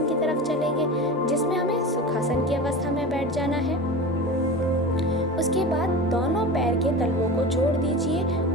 की तरफ चलेंगे, जिसमें हमें सुखासन की अवस्था में बैठ जाना है। उसके बाद दोनों पैर के तलवों को जोड़ दीजिए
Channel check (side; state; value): both; normal; correlation 0.30